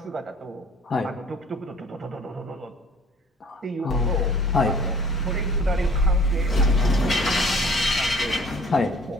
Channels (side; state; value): both; normal; correlation 0.52